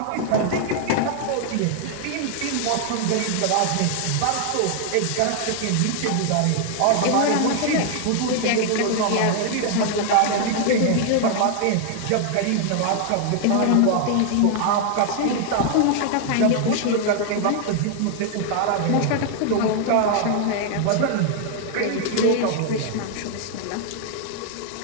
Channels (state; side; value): different; both; correlation 0.00